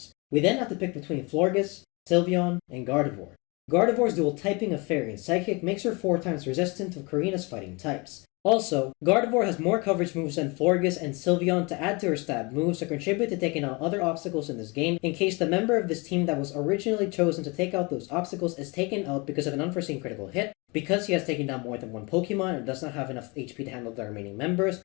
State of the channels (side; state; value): right; quieter; 27.9 dB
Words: We then have to pick between Florges, Sylveon, and Gardevoir. Gardevoir's dual typing of Fairy and Psychic makes her 4 times resistant to Karina's fighting types. Also, Gardevoir has more coverage moves than Florges and Sylveon to add to her stab moves to contribute to taking out other obstacles in this game in case the member of this team that was originally chosen to take out those obstacles is taken out because of an unforeseen critical hit, because he has taken down more than one Pokemon and does not have enough HP to handle the remaining members,